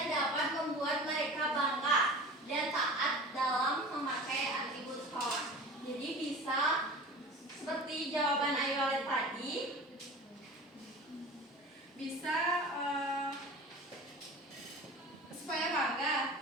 dapat membuat mereka bangga dan taat dalam memakai atribut sekolah. Jadi bisa seperti jawaban Ayu tadi, Bisa supaya bangga,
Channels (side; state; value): both; normal; correlation 0.37